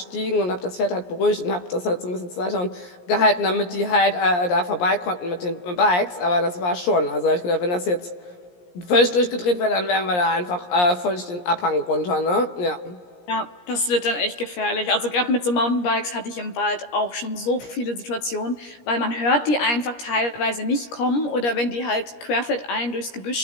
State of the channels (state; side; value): late; right; 17 ms